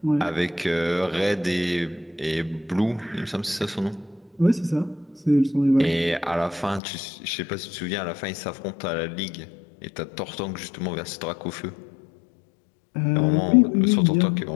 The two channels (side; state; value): right; drops out; at 6.8 s